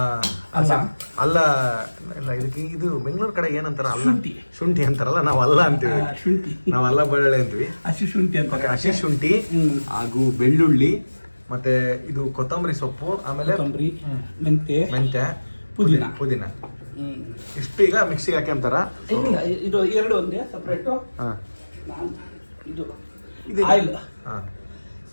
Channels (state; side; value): inverted; both; correlation -1.00